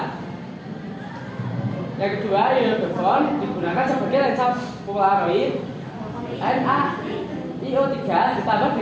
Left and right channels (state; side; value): identical; both; correlation 1.00